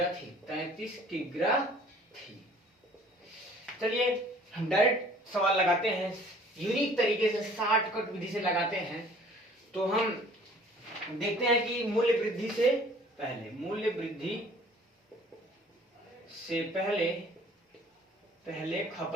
किग्रा थी। चलिए हम डायरेक्ट सवाल लगाते हैं, यूनिक तरीके से शॉर्टकट विधि से लगाते हैं। तो हम देखते हैं कि मूल्य वृद्धि से पहले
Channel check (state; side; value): normal; both; correlation 0.53